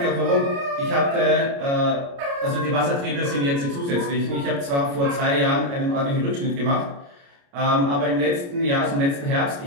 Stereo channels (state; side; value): late; left; 29 ms